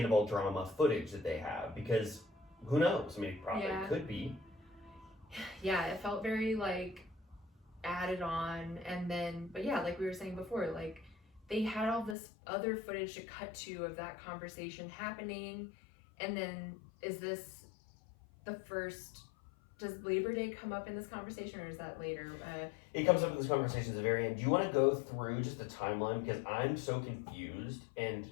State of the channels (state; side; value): drops out; right; at 12.2 s